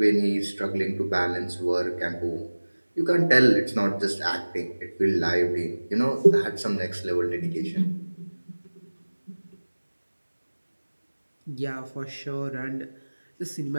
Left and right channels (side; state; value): both; inverted; correlation -1.00